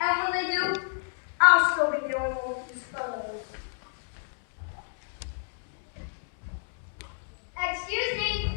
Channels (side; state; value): right; silent; digital silence